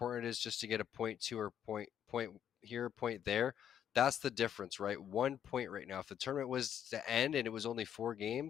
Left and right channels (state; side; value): quieter; right; 9.5 dB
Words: it is just to get a point 2 or point here, point there. That's the difference, right? 1 point right now. If the tournament was to end and it was only 4